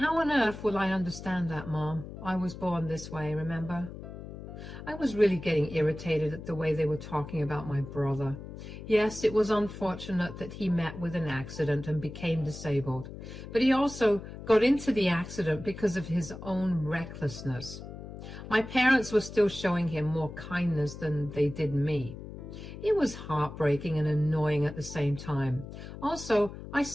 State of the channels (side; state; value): left; noise; hum, 12 dB below the sound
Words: on earth will I understand that, Mom? I was born this way, remember?" I was really getting irritated at the way they were talking about my brother. Yes, it was unfortunate that he met with an accident and became disabled, but he also got into the accident because of his own recklessness. My parents were still showing him more kindness than they did me. It was heartbreaking and annoying at the same time. Also, I